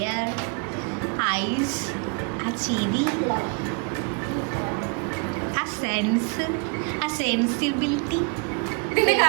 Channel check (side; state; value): left; quieter; 35.0 dB